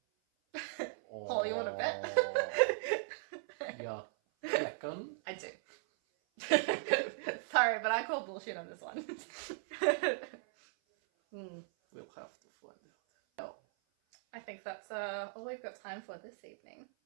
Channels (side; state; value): left; silent; 53 dB below the other